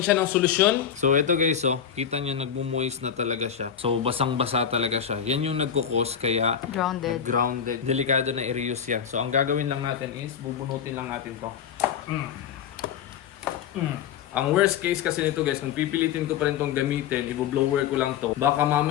siya ng solusyon. So ito guys oh, kita nyo nagmo-moist na talaga siya. So basang-basa talaga siya. Yan yung nagkukos kaya grounded. Delikado na i-reuse yan. So, ang gagawin lang natin is, bubunutin lang natin to. Ang worst case kasi nito guys, kung pipilitin ko pa rin tong gamitin, i-blower ko lang to. Baka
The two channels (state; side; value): quieter; right; 8.3 dB